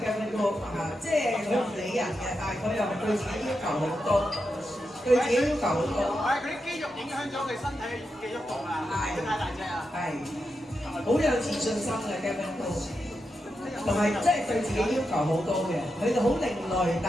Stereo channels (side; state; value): both; normal; correlation 0.87